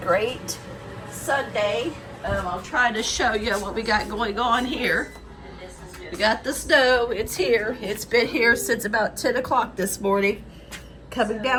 Sunday. I'll try to show you what we got going on here. We got the snow. It's here. It's been here since about 10 o'clock this morning. Coming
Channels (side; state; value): both; identical; correlation 1.00